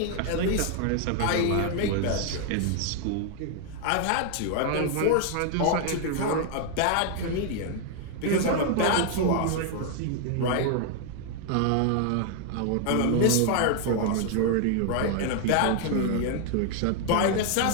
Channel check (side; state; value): both; different; correlation 0.00